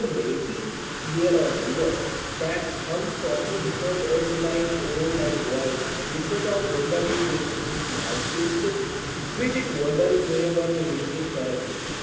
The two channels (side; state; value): both; identical; correlation 1.00